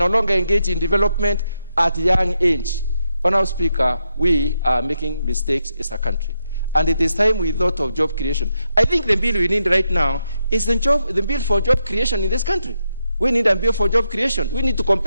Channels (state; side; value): inverted; both; correlation -0.84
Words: longer engage in development at young age? Honorable Speaker, we are making mistakes as a country. And it is time we thought of job creation. I think the bill we need right now is the bill for job creation in this country. We need a bill for job creation. We need to